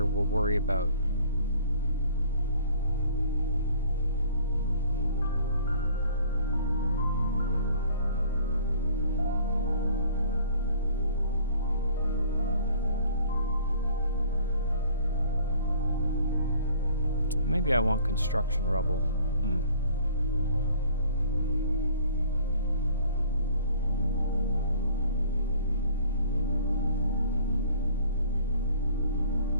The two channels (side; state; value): both; inverted; correlation -0.55